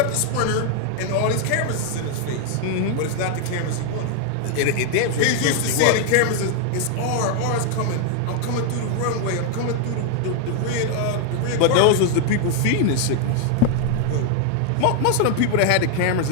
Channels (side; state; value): both; different; correlation 0.00